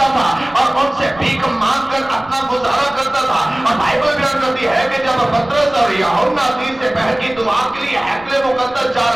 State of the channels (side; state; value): right; noise; rumble, 23 dB below the sound